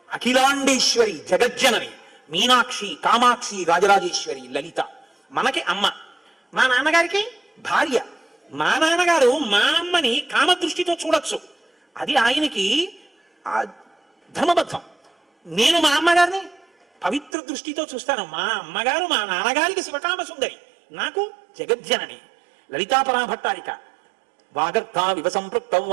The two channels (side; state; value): left; drops out; at 17.3 s